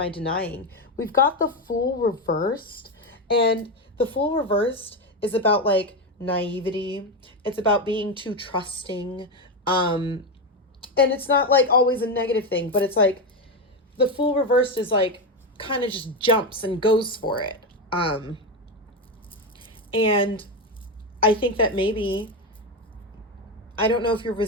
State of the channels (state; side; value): normal; both; correlation 0.12